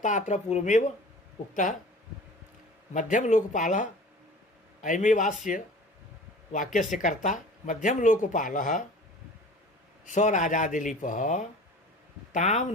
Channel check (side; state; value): both; normal; correlation 0.42